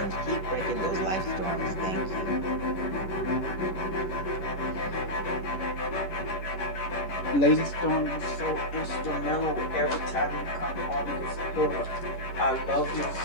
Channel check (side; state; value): right; late; 11 ms